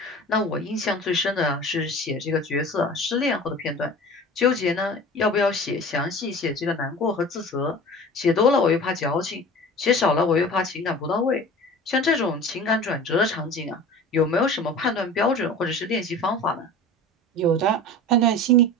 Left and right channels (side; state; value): both; normal; correlation 0.38